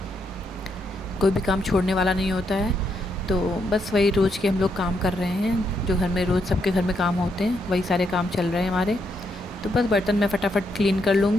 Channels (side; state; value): both; normal; correlation 0.78